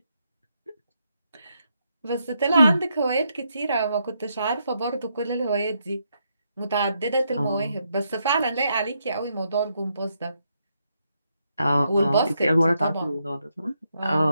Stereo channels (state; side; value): inverted; both; correlation -0.79